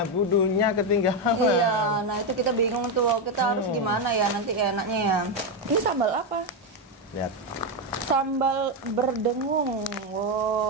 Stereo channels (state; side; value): normal; both; correlation 0.07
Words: budunya ketinggalan. Iya, nah itu kita bingung tuh, kita harus gimana ya nanti enaknya ya. Ini sambal apa? Lihat. Sambal berdengung.